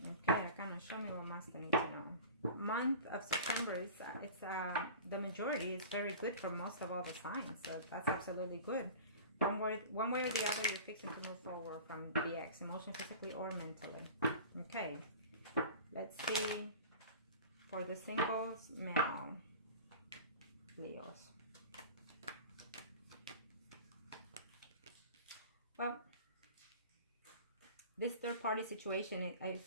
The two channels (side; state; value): both; inverted; correlation -0.38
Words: Okay, kind of show me what Master needs to know. Month of September is the majority is very good for most of all the signs, so that's absolutely good. One way or the other, you're fixing to move forward from the ex, emotionally, physically, or mentally. Okay, let's see for the singles male Leos. Well, this third party situation, it